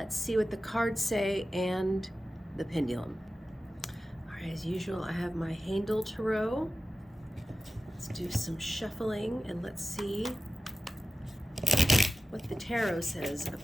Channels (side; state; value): both; normal; correlation 0.94